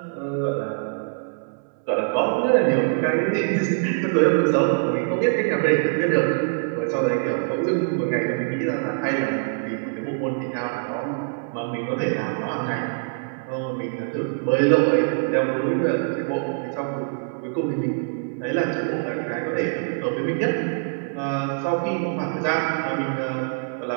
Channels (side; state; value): left; silent; digital silence